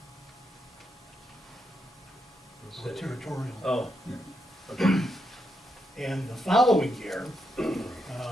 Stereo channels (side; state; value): both; normal; correlation 0.82